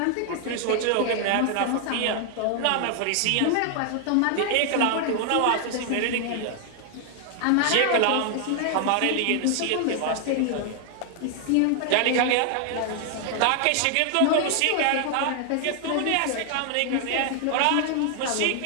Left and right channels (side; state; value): both; different; correlation 0.00